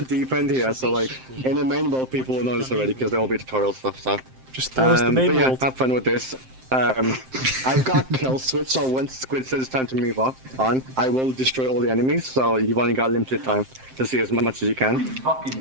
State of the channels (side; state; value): left; late; 7.7 ms